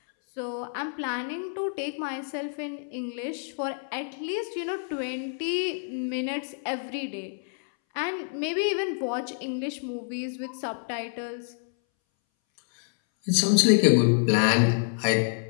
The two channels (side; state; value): right; silent; 60 dB below the other